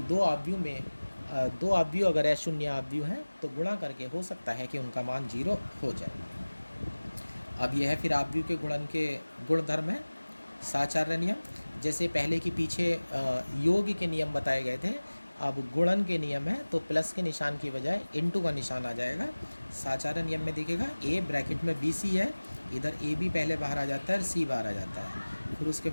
अवयव में 2 अवयव अगर शून्य अवयव हैं तो गुणा करके हो सकता है कि उनका मान 0 हो जाए। अब यह है फिर अवयव के गुणन के गुणधर्म है, साचार्य नियम। जैसे पहले की पीछे योग के नियम बताए गए थे, अब गुणन के नियम है तो प्लस के निशान की बजाय इनटू का निशान आ जाएगा। साचार्य नियम में देखिएगा, ए ब्रैकेट में बी सी है, इधर ए बी पहले बाहर आ जाता है और सी बाहर आ जाता है। फिर उसके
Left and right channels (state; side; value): inverted; both; correlation -1.00